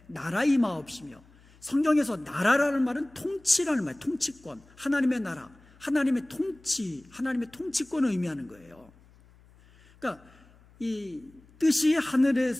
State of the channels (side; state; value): left; noise; hum, 27 dB below the sound